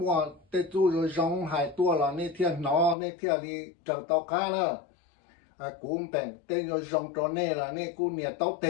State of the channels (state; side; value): drops out; right; at 3.0 s